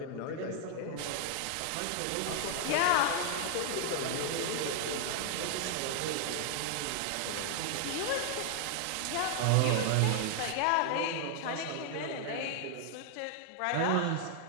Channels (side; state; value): both; different; correlation 0.00